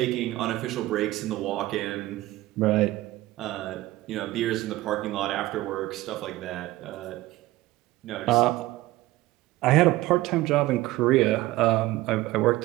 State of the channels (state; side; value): quieter; left; 17.7 dB